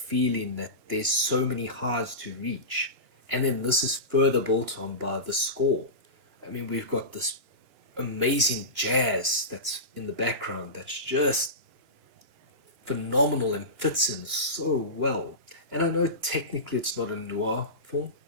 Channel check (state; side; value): late; left; 2.9 ms